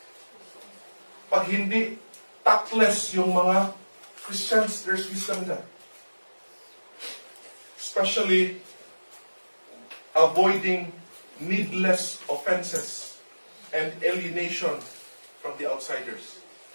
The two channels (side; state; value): both; inverted; correlation -1.00